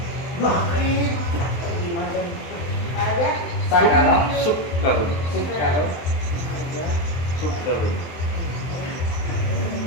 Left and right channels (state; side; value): late; right; 23 ms